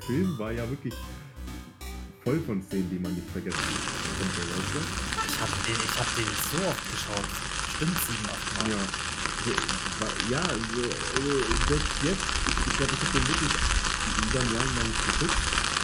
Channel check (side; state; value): both; identical; correlation 1.00